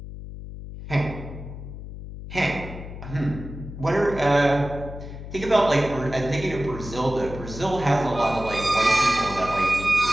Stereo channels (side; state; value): left; noise; hum, 11 dB below the sound